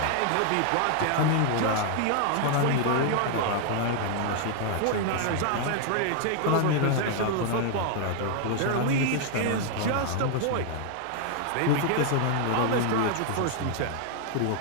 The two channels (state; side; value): different; both; correlation 0.00